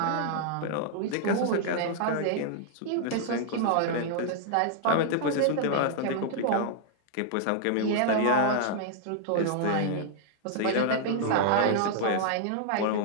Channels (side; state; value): both; different; correlation -0.01